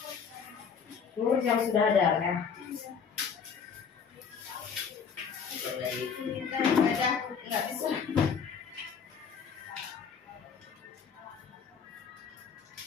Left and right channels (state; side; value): quieter; right; 6.5 dB